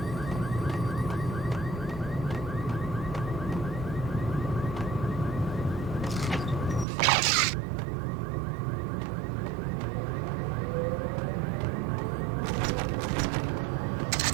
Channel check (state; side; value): drops out; left; at 6.9 s